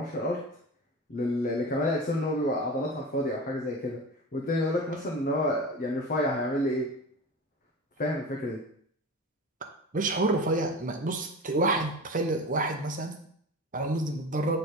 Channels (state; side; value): normal; both; correlation 0.31